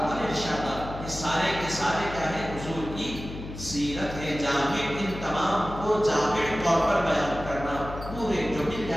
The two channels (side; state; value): left; noise; hum, 10 dB below the sound